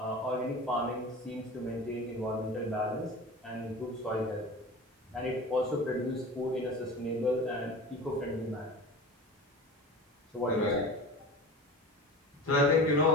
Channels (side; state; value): both; normal; correlation 0.34